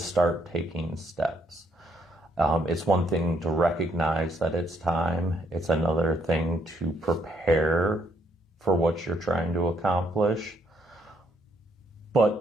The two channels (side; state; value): both; normal; correlation 0.71